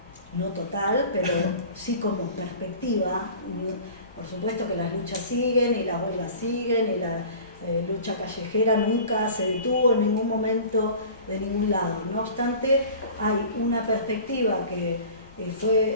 no total, pero sí como perspectiva. Por supuesto que las luchas siguen y las huelgas siguen y la lucha callejera nunca se detuvo en ningún momento de ningún lado. No obstante, hay una perspectiva que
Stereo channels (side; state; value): both; inverted; correlation -0.42